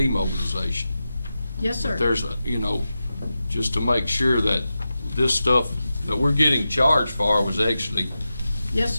Yes, sir. There's a, just to make sure that this stuff that we're getting charged for was actually Yes,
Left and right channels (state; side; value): inverted; both; correlation -0.92